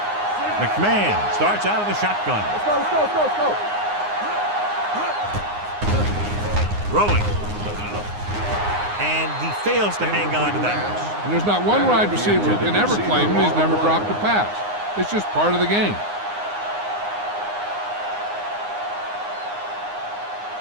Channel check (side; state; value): left; late; 9.7 ms